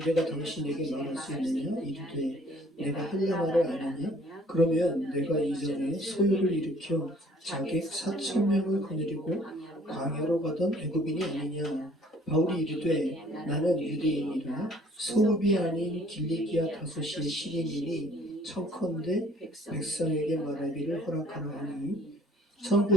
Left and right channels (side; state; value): both; normal; correlation 0.57